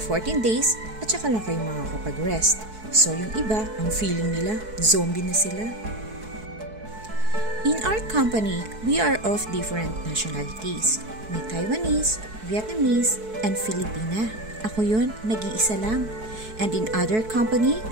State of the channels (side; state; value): left; late; 4.6 ms